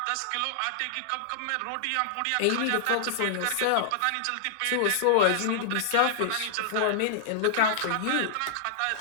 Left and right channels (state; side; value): different; both; correlation -0.01